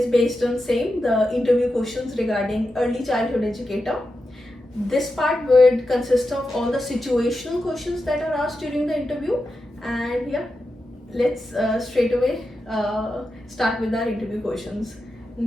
based on same the interview questions regarding early childhood educator. This part would consist of all the situational questions that are asked during the interview, and yeah, let's straight away start with our interview questions.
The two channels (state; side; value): normal; both; correlation 0.89